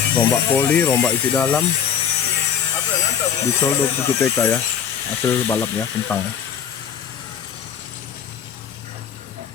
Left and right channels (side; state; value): right; quieter; 8.2 dB